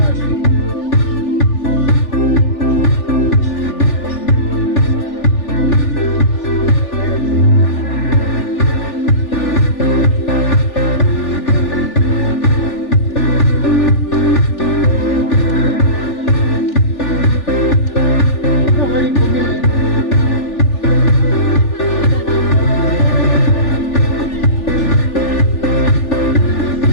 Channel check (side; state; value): right; late; 3.4 ms